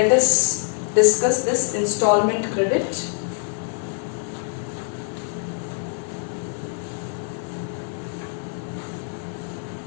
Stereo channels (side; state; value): right; silent; 63 dB below the other